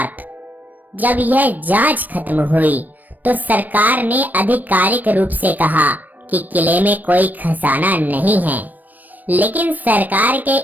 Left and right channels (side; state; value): left; late; 0.086 ms